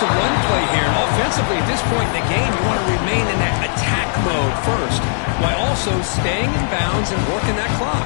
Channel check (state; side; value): silent; right; digital silence